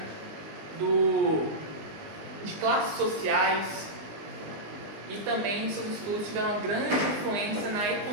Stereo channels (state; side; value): late; left; 19 ms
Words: de classes sociais, e também seus estudos tiveram uma grande influência na